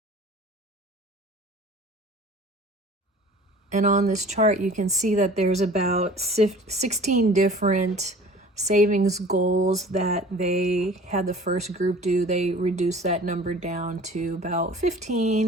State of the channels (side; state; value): both; normal; correlation 0.45